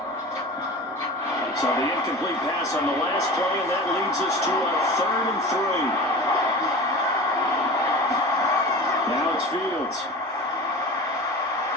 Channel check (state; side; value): normal; both; correlation 0.34